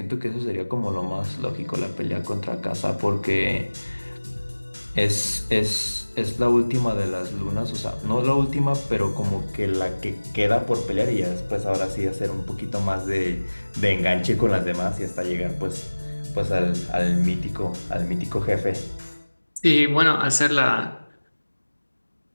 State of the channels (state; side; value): inverted; both; correlation -1.00